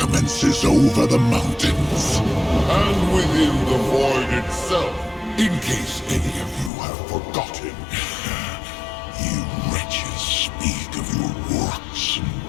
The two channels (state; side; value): drops out; right; at 6.7 s